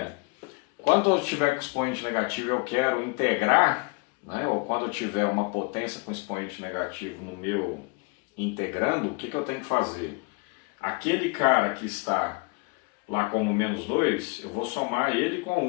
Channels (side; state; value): right; quieter; 30.3 dB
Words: quando eu tiver com expoente negativo eu quero integrar, né, ou quando eu tiver uma potência com expoente negativo no meu integrando, o que eu tenho que fazer? Aquele cara que está lá como menos 2, eu vou somar ele com